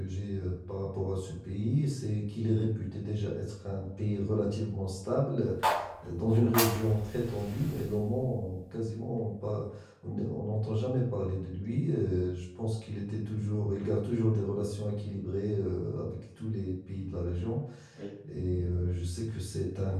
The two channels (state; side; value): identical; both; correlation 1.00